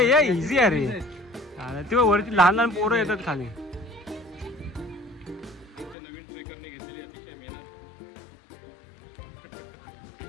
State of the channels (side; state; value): right; drops out; at 6.0 s